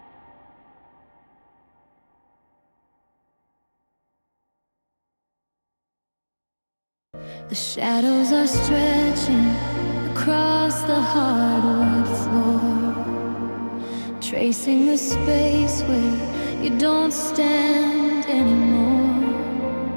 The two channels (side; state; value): both; inverted; correlation -1.00